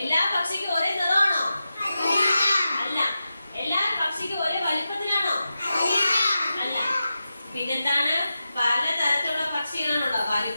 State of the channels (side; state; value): both; inverted; correlation -0.91